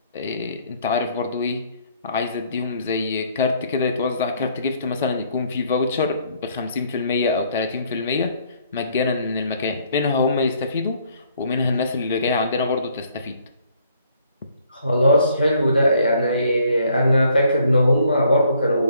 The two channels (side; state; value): both; inverted; correlation -0.65